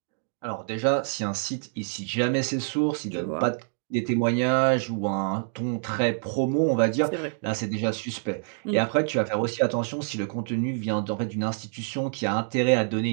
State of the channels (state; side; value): silent; left; digital silence